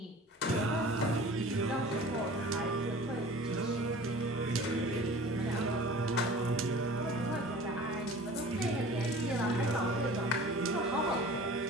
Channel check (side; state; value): both; normal; correlation 0.42